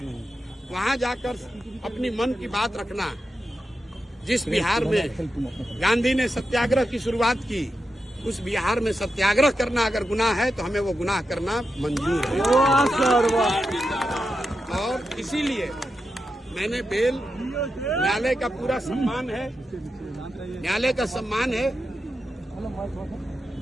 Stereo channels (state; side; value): normal; both; correlation 0.88